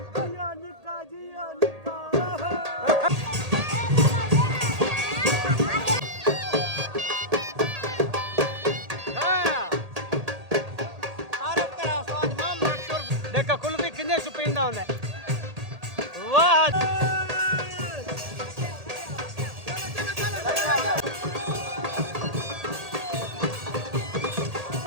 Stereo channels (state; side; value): late; left; 1.8 ms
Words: देखा कुल्फी किन्ने सुपींदा होंदा वाह।